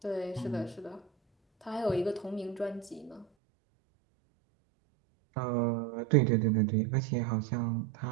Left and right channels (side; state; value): left; drops out; at 3.2 s